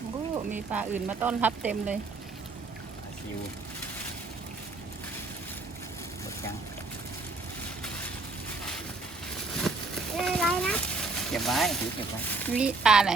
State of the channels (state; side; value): quieter; left; 3.7 dB